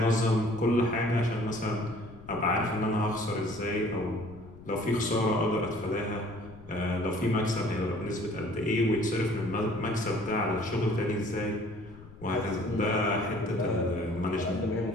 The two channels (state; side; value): noise; left; rumble, 18 dB below the sound